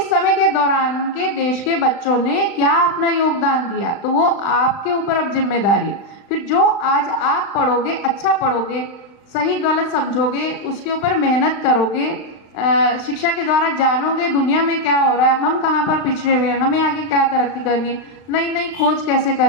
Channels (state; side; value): late; right; 35 ms